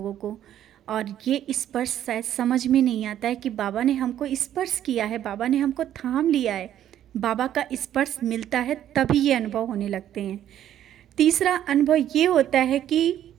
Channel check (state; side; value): quieter; left; 11.2 dB